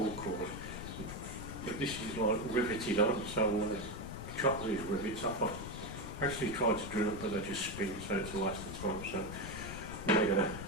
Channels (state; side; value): noise; left; rumble, 9 dB below the sound